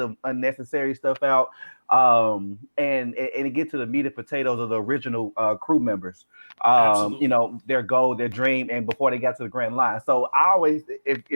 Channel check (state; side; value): inverted; both; correlation -1.00